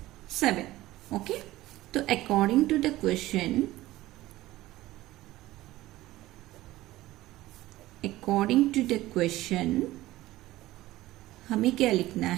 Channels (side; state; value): left; quieter; 16.8 dB